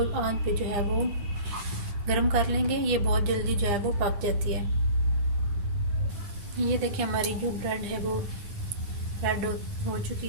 आंच पे जो है वो गरम कर लेंगे। ये बहुत जल्दी जो है वो पक जाती है। ये देखिए हमारी जो ब्रेड है वो रेड हो चुकी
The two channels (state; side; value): late; left; 9.4 ms